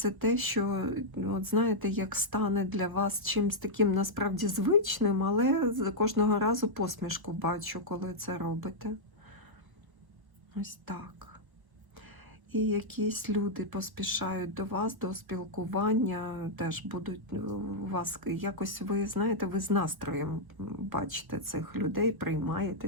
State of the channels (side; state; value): left; late; 1.2 ms